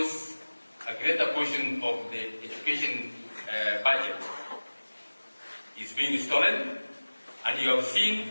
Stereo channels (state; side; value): inverted; both; correlation -1.00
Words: a greater portion of the education budget is being stolen, and you have seen